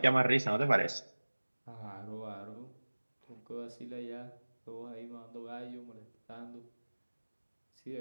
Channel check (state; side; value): inverted; both; correlation -1.00